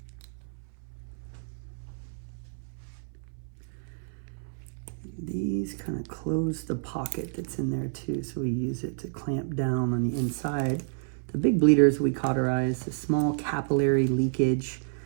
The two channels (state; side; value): silent; left; 58 dB below the other